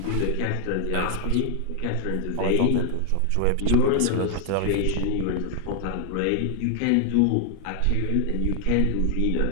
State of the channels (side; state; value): both; different; correlation 0.00